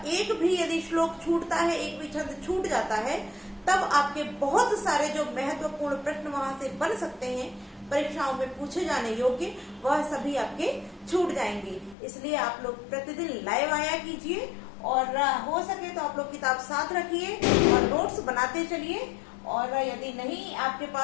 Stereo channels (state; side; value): drops out; right; at 12.0 s